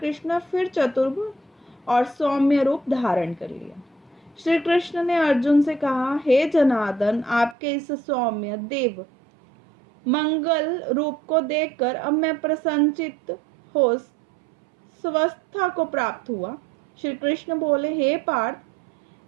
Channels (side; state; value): left; drops out; at 7.6 s